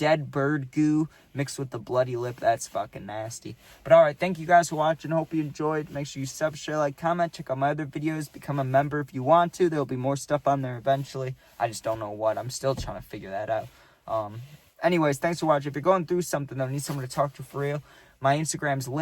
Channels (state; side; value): identical; both; correlation 1.00